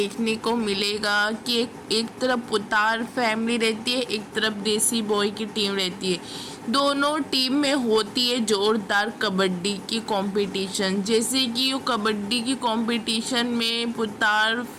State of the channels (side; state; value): both; identical; correlation 1.00